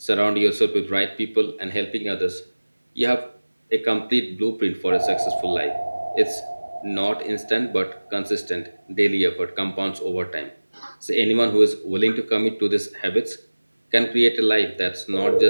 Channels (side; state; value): both; inverted; correlation -1.00